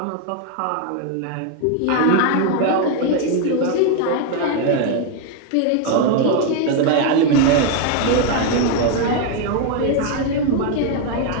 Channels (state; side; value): different; both; correlation 0.01